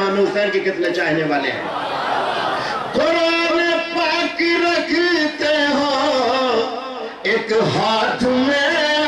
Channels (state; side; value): identical; both; correlation 1.00